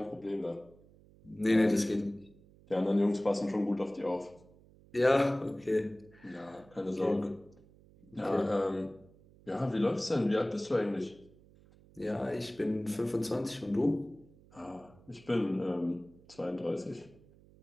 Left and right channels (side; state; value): right; noise; hum, 26 dB below the sound